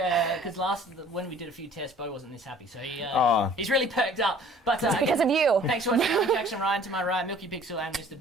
because when we did a few tests, Beau wasn't this happy, so he's really perked up. But It's because of you. thanks for watching. I'm Jackson Ryan, to my right, Milky Pixel, and Mr.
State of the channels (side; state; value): both; normal; correlation 0.52